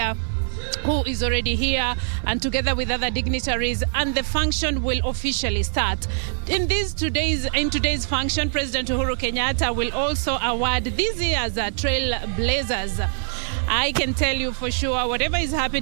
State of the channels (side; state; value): left; silent; digital silence